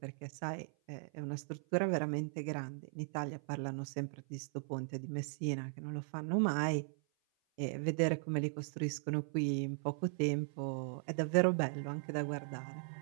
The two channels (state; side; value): silent; left; 52 dB below the other